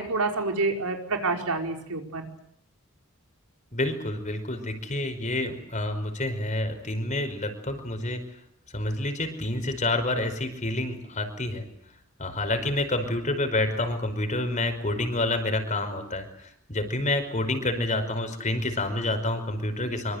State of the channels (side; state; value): both; normal; correlation 0.31